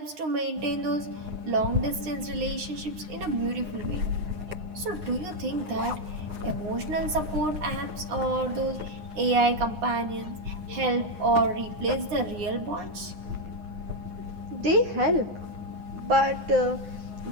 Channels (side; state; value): left; late; 9.8 ms